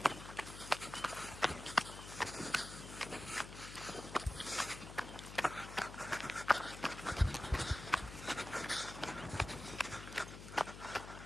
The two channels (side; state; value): left; noise; hum, 12 dB below the sound